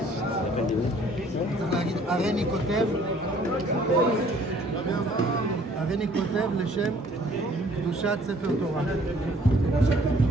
צריך להגיד, הרני כותב לשם קדושת ספר תורה.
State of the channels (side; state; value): both; normal; correlation 0.58